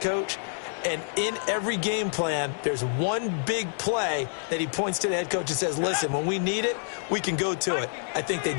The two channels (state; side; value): silent; right; digital silence